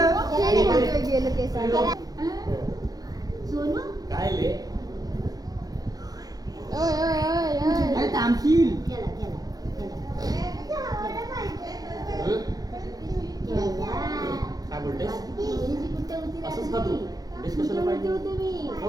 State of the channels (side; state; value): left; late; 0.18 ms